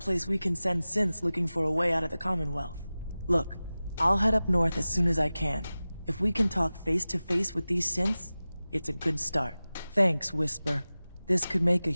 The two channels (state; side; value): inverted; both; correlation -0.97